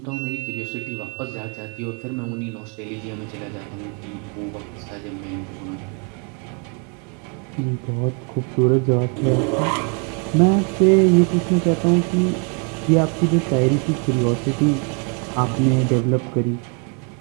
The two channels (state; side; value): quieter; left; 37.3 dB